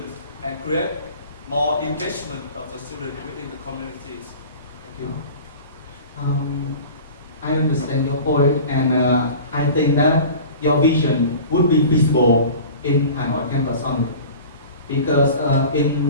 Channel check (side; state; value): both; inverted; correlation -0.39